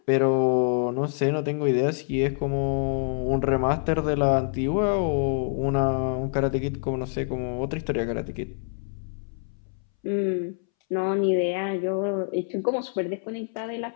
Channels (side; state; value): right; silent; 61 dB below the other